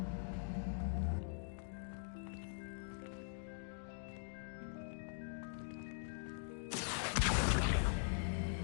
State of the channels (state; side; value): silent; right; digital silence